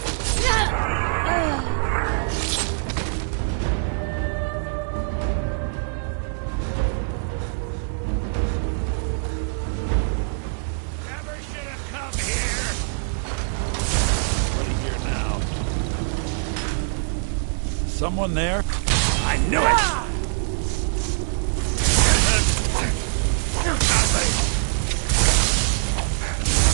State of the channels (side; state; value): left; silent; 63 dB below the other